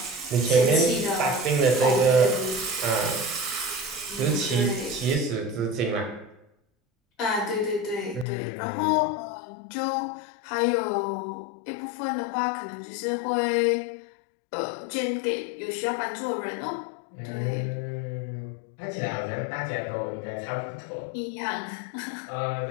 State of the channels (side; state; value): right; drops out; at 8.2 s